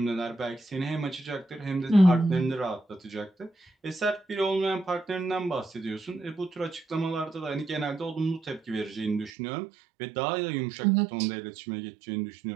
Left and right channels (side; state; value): left; drops out; at 9.3 s